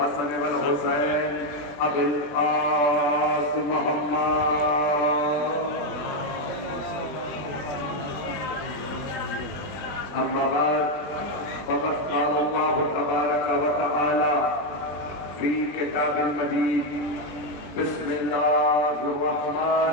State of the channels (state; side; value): late; right; 20 ms